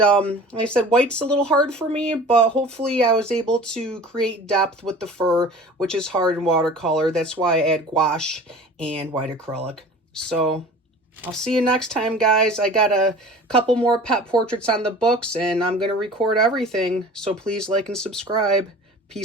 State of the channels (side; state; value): both; normal; correlation 0.42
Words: like I said, white's a little hard for me, but hopefully I was able to create depth with the fur, which is hard in watercolor. That's why I add gouache and white acrylic. So I'll see you next time, guys. I got a couple more pet portraits on the books, and I'm going to record everything. So please like and subscribe.